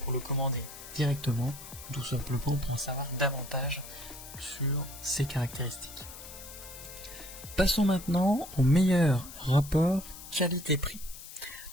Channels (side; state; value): left; noise; hiss, 14 dB below the sound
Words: pour le commander directement, tout simplement pour en savoir davantage sur ses caractéristiques. Passons maintenant au meilleur rapport qualité-prix.